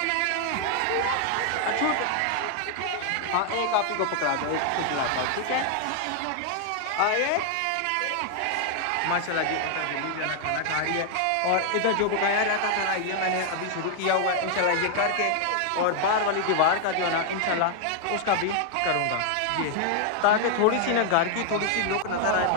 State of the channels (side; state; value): both; different; correlation 0.00